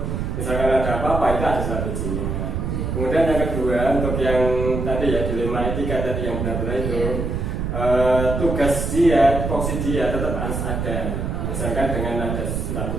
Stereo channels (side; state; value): right; noise; rumble, 2 dB below the sound